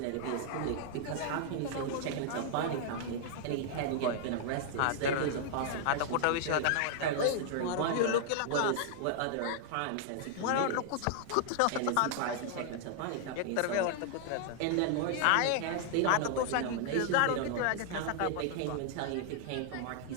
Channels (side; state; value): both; different; correlation 0.00